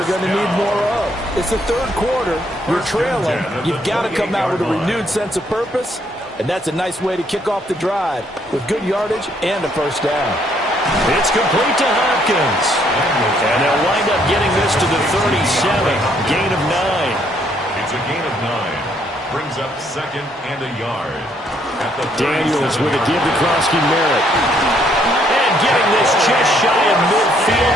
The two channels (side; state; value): both; normal; correlation 0.69